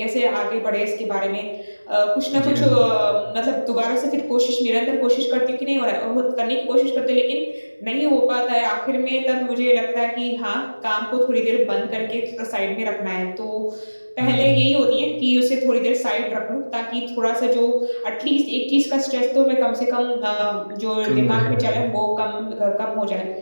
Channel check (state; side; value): inverted; both; correlation -1.00